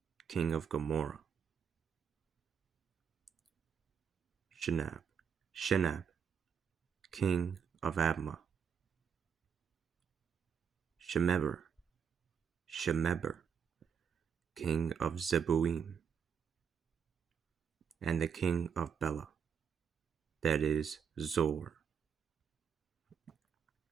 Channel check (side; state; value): left; quieter; 7.2 dB